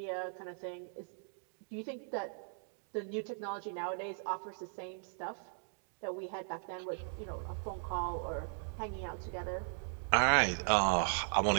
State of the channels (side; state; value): left; silent; 52 dB below the other